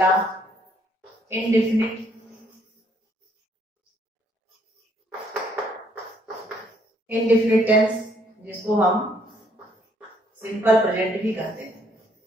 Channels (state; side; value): normal; both; correlation 0.67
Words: इंडेफिनिट, इंडेफिनिट टेंस जिसको हम सिंपल प्रेजेंट भी कहते हैं।